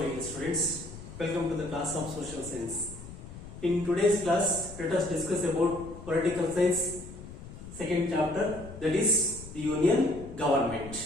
dear students, welcome to the class of social science. In today's class, let us discuss about political science second chapter, that is the union government.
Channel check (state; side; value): noise; left; rumble, 14 dB below the sound